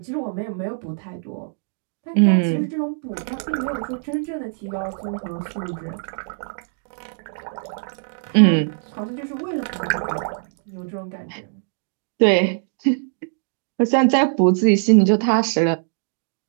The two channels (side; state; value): left; silent; 61 dB below the other